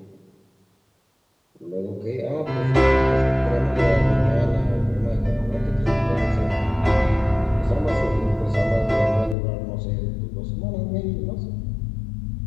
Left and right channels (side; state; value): right; drops out; at 9.3 s